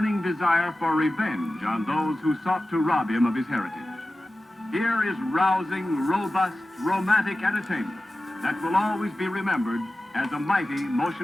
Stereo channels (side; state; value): both; normal; correlation 0.95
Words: desire for revenge on those who sought to rob him of his heritage. Here is rousing, robust, romantic entertainment that will always be remembered as a mighty